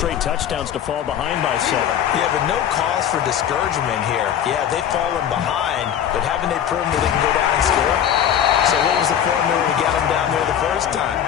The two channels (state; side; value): quieter; right; 9.6 dB